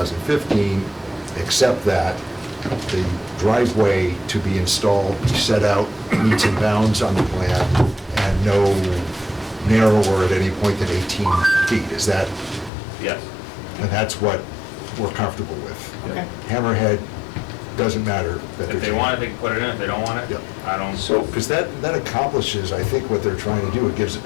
except that the driveway to be installed be set out meets and bounds on the plan and no narrower at any point than 18 feet. Is that, Yes. and that's what we're comfortable with. Okay. Hammerhead, doesn't matter that they're. If they want it, they can put it in, if they don't want it, Yep. I don't. So, Because that accomplishes, I think, what they're trying to do. It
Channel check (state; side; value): drops out; right; at 12.7 s